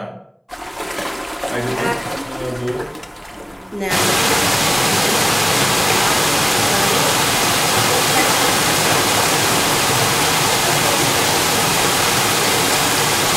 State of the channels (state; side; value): identical; both; correlation 1.00